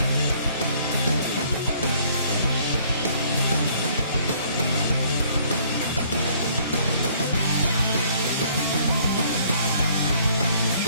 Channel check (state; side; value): inverted; both; correlation -0.60